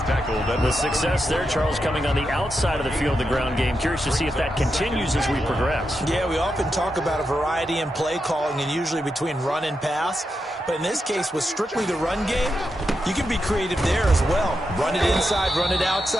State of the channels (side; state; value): both; normal; correlation 0.86